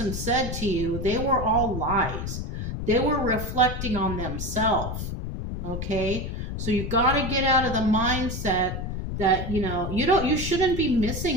said to you, they were all lies. They were reflecting on themselves. Okay? So you got to get out of the mindset that, you know, you shouldn't be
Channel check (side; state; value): left; noise; rumble, 4 dB below the sound